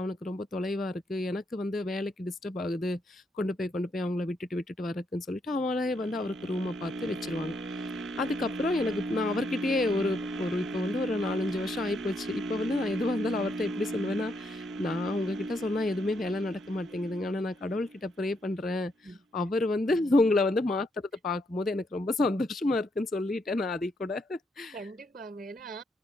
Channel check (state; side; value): normal; both; correlation 0.77